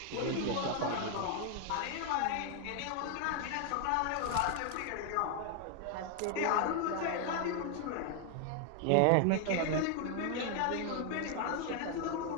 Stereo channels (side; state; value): both; different; correlation 0.00